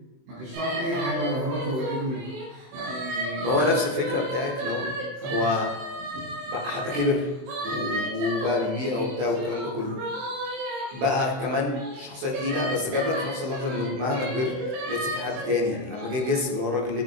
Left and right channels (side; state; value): left; late; 23 ms